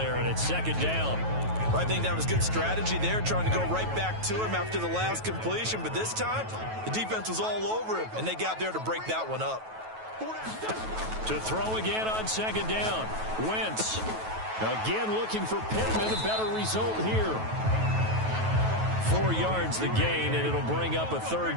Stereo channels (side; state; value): left; late; 9.2 ms